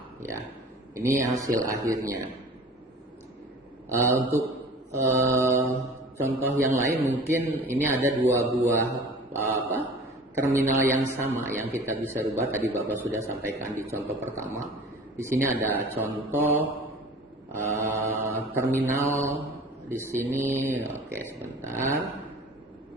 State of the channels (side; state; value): both; normal; correlation 0.43